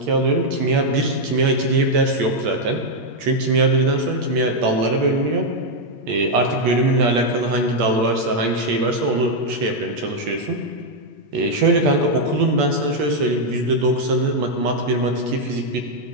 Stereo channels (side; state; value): left; late; 8.6 ms